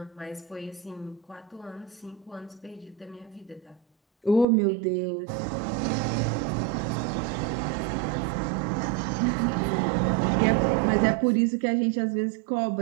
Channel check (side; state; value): left; drops out; at 4.5 s